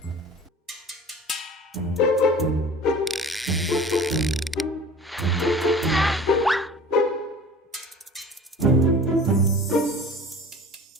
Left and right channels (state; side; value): normal; both; correlation 0.41